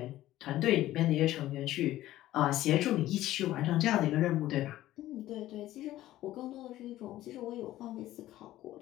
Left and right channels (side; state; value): right; quieter; 14.7 dB